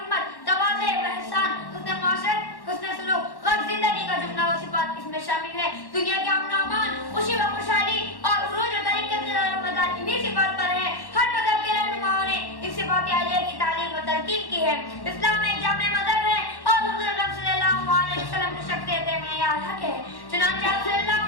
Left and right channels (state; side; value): late; right; 1.1 ms